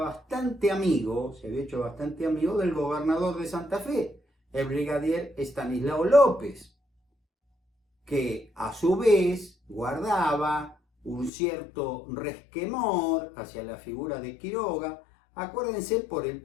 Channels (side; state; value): right; drops out; at 11.3 s